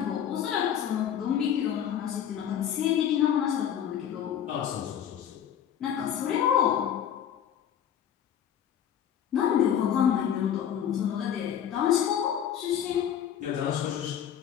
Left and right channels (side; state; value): right; quieter; 9.5 dB